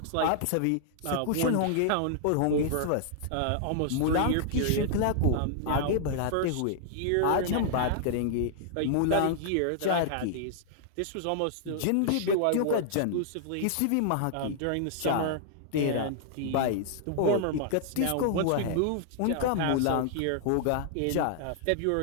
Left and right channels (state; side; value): different; both; correlation -0.01